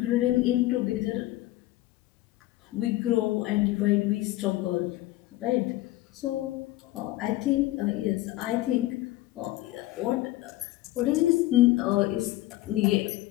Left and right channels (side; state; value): right; quieter; 16.9 dB